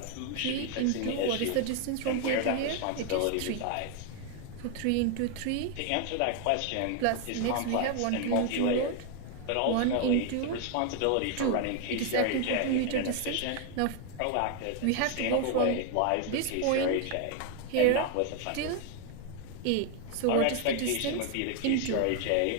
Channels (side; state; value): both; different; correlation 0.01